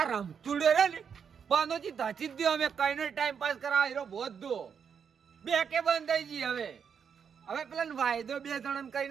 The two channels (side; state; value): left; quieter; 7.0 dB